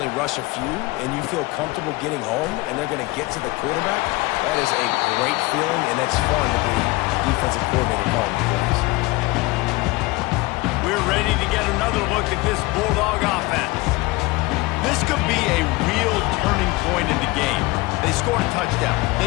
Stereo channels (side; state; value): right; quieter; 21.9 dB